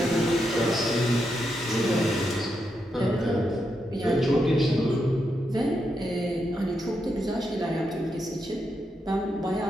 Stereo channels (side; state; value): both; normal; correlation 0.83